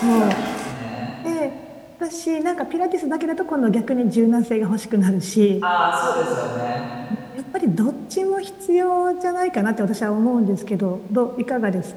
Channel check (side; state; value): both; identical; correlation 1.00